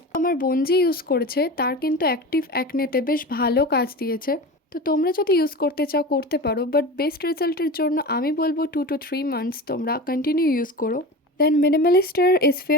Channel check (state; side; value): normal; both; correlation 0.30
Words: আমার বোন যে ইউজ করেছে তার কিন্তু অ্যাক্টিভ অ্যাকনেতে বেশ ভালো কাজ দিয়েছে। তো তোমরা যদি ইউজ করতে চাও করতে পারো, বাট বেস্ট রেজাল্টের জন্য আমি বলবো 2 to 3 months তোমরা কন্টিনিউ ইউজ করো। Then Minimalister